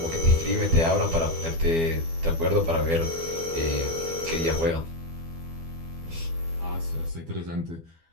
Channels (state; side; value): late; left; 12 ms